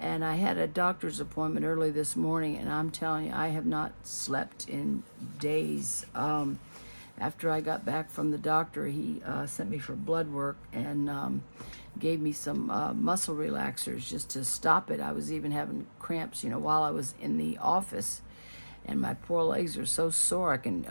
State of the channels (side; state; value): both; inverted; correlation -1.00